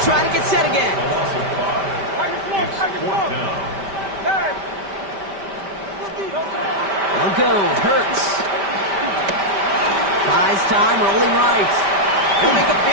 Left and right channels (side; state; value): left; late; 5.1 ms